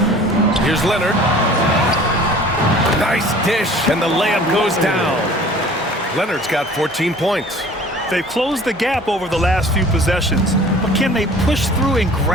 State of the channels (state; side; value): normal; both; correlation 0.48